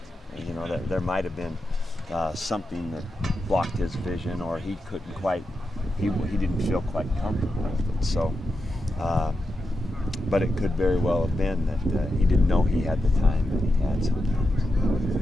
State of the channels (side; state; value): both; normal; correlation 0.88